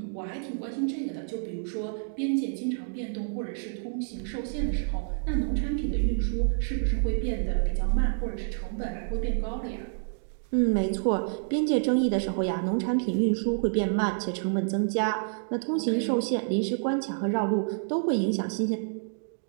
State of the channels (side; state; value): left; silent; digital silence